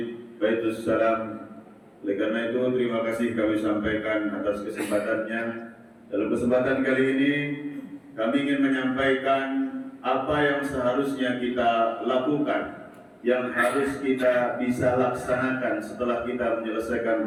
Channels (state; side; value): identical; both; correlation 1.00